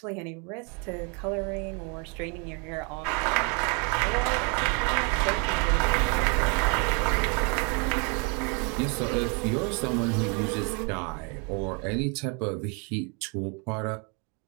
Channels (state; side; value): quieter; left; 34.3 dB